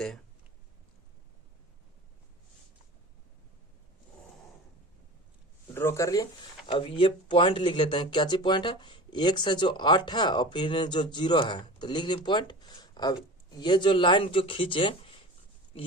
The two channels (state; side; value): normal; both; correlation 0.35